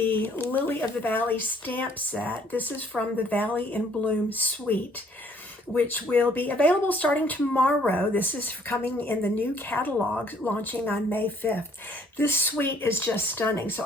Lily of the Valley stamp set. This is from the Valley in Bloom suite, which will be available starting tomorrow. This is coming in the new catalog launching on May 5th. This suite is just stunning. So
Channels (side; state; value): both; normal; correlation 0.61